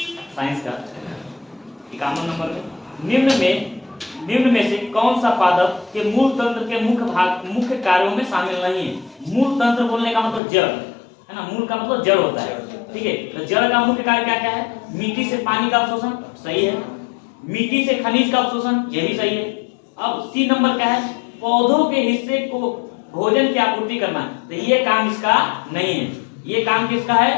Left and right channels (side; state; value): right; drops out; at 10.4 s